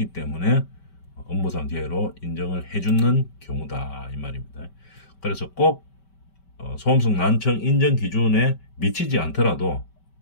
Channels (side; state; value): right; late; 5.2 ms